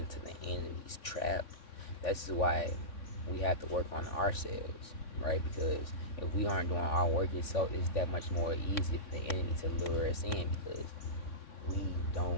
the enemy's trap. That's why we have to work on ourselves, right? Because if we aren't doing our work itself, it's that much more easy for the enemy to lure us in because we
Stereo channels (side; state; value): right; late; 3.6 ms